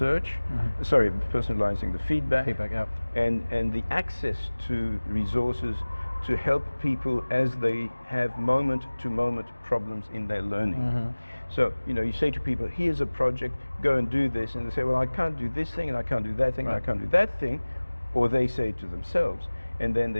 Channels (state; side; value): inverted; both; correlation -1.00